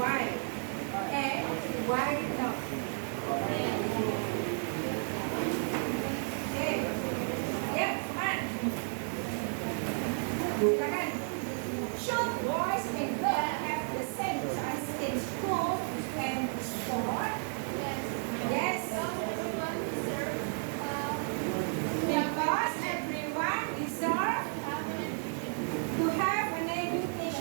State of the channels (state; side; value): silent; left; 56 dB below the other